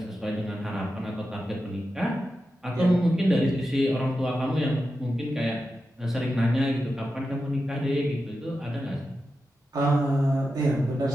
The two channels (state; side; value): normal; both; correlation 0.90